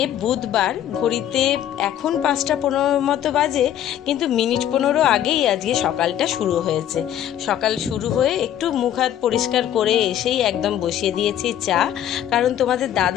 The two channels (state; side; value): quieter; right; 11.0 dB